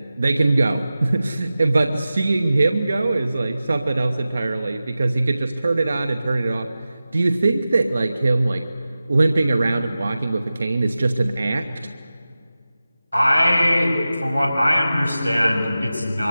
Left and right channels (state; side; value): inverted; both; correlation -0.95